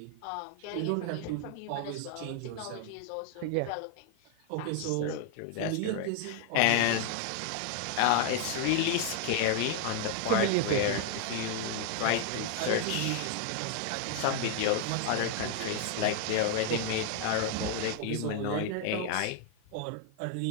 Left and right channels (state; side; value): different; both; correlation 0.00